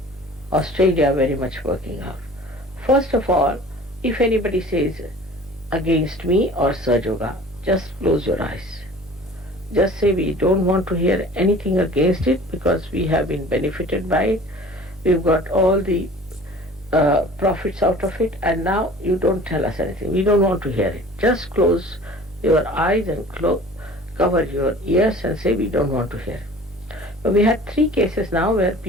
Australia very much working out. First of all, if anybody says against me or Saj Yoga, just close your eyes. Just say we don't want to hear anything against it because we have been benefited by it. We've got all the profits out of it, and now you don't tell us anything. We don't want to hear it. Just close your eyes and cover your ears and say we don't want to hear it. But we had 3 cases now where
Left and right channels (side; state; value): both; normal; correlation 0.45